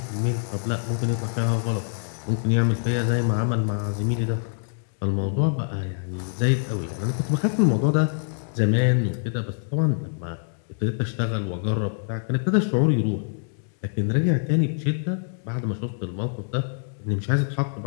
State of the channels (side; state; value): right; silent; digital silence